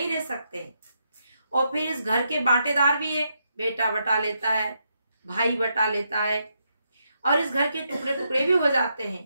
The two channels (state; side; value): inverted; both; correlation -0.81